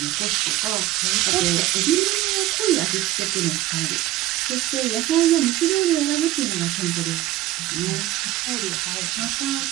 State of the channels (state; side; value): quieter; left; 15.3 dB